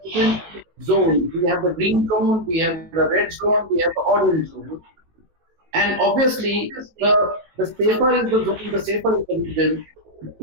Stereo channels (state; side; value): late; left; 18 ms